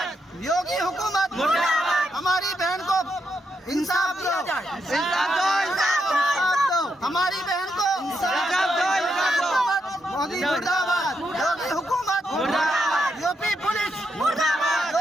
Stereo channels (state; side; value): normal; both; correlation 0.81